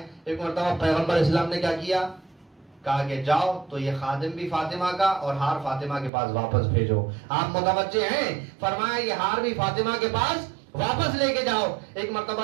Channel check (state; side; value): drops out; left; at 6.1 s